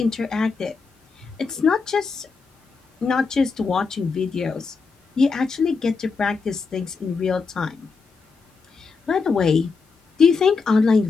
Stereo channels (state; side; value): quieter; right; 4.8 dB